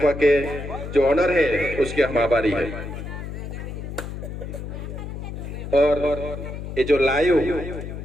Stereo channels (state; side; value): noise; left; hum, 8 dB below the sound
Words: के जो ऑनर है उसके हम आभारी है। और ये जो लाइव